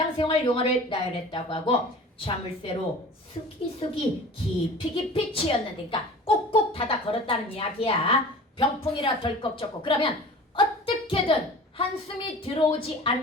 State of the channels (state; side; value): normal; both; correlation 0.41